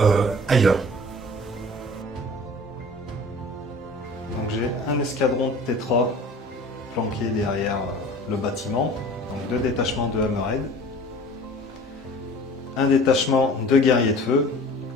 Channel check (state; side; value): normal; both; correlation 0.44